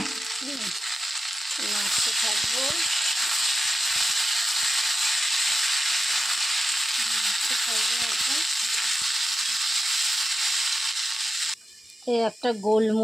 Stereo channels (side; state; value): both; normal; correlation 0.92